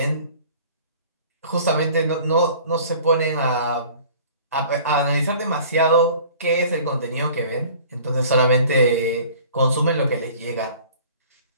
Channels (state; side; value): inverted; both; correlation -0.47